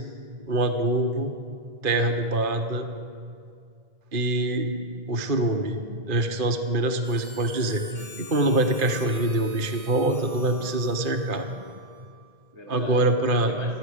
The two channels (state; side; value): late; left; 2.4 ms